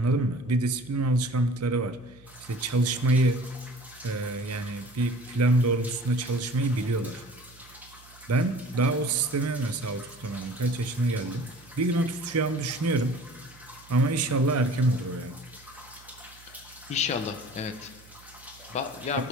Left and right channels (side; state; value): right; noise; hum, 24 dB below the sound